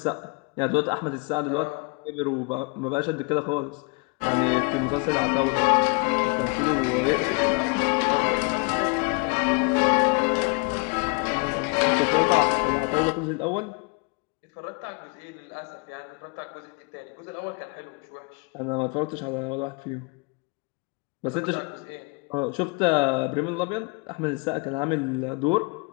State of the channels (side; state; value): right; quieter; 31.5 dB